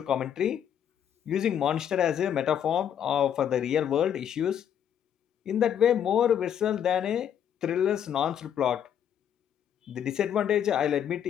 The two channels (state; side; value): quieter; right; 9.2 dB